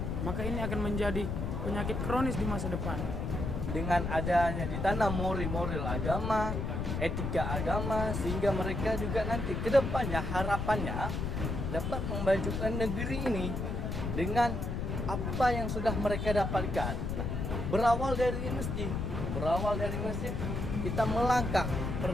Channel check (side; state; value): left; noise; rumble, 2 dB below the sound